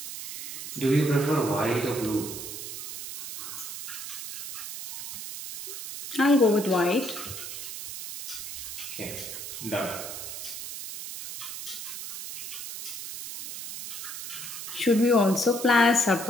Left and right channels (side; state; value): right; noise; hiss, 8 dB below the sound